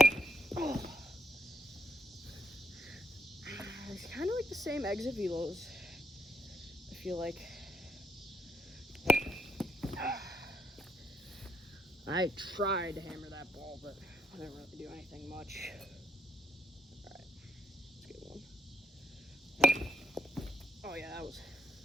Oh. same exit velos, I feel like. I tried to hammer that ball, but I didn't really do anything much. Alright, let's get one. Oh yeah,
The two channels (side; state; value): both; normal; correlation 0.73